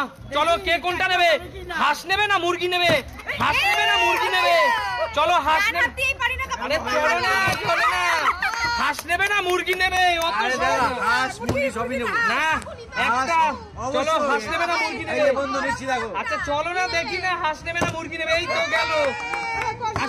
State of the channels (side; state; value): both; identical; correlation 1.00